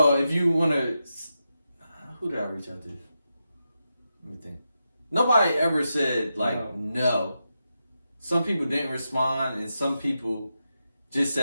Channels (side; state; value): both; inverted; correlation -0.88